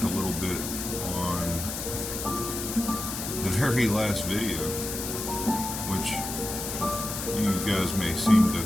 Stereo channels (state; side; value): noise; left; hiss, 5 dB below the sound